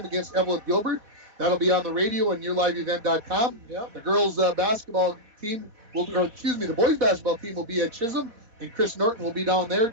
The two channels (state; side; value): late; left; 4.2 ms